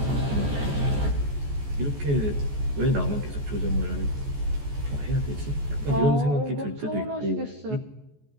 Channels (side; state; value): left; late; 14 ms